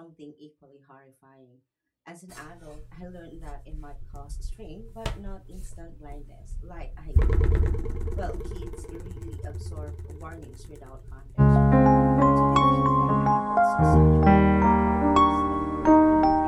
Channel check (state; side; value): identical; both; correlation 1.00